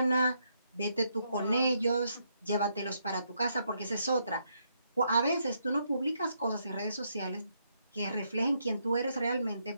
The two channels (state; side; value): inverted; both; correlation -0.77